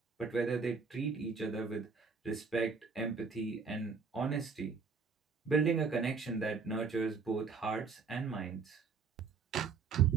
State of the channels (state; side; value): quieter; left; 5.2 dB